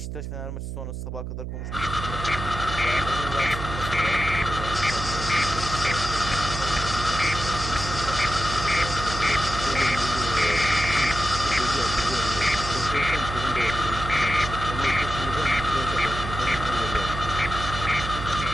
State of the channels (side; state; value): right; noise; hum, 6 dB below the sound